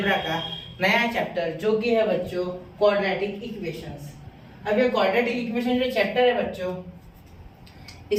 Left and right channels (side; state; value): both; identical; correlation 1.00